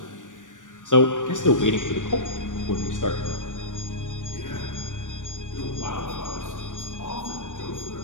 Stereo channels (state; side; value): late; right; 0.87 ms